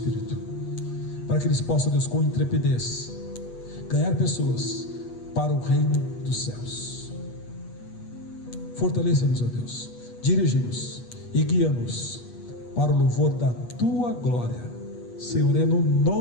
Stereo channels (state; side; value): late; right; 8.3 ms